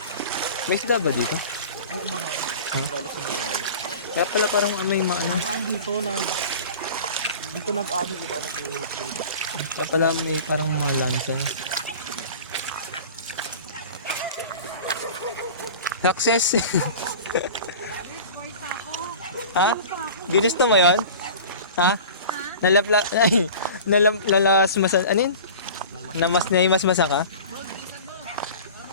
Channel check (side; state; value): both; inverted; correlation -0.38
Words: May isda ba dito? Oo, marami. Huh? Lalo sa Mayroon. Kaya pala parang may maano. Dito nag-ano, iba nag-trade. Kaya pala may parang mga lansa niya. Success! Ha? Ginusto mo yun? Ha? Nalasmasan, ano yun? Naimasmasan ka?